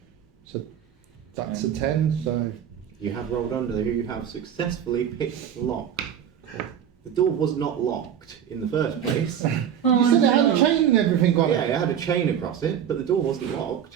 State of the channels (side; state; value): left; quieter; 9.1 dB